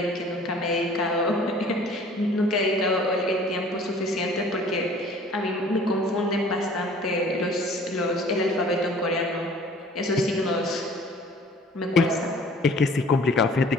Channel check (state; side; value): normal; both; correlation 0.50